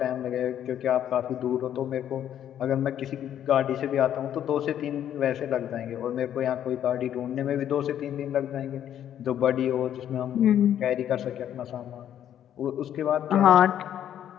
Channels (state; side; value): quieter; right; 10.4 dB